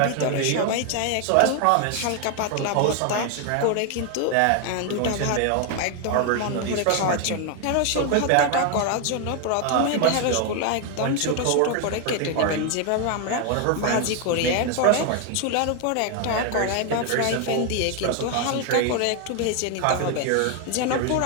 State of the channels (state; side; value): different; both; correlation 0.01